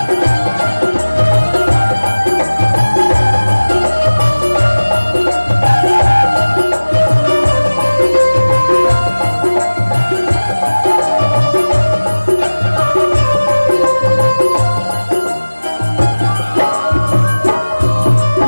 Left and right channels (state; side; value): inverted; both; correlation -1.00